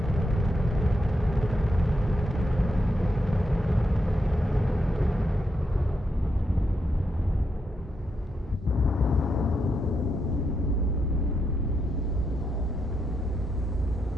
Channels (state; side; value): normal; both; correlation 0.82